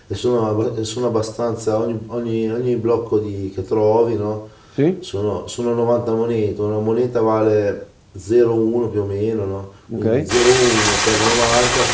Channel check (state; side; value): identical; both; correlation 1.00